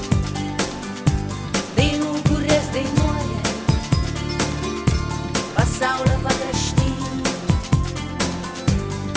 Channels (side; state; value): both; identical; correlation 1.00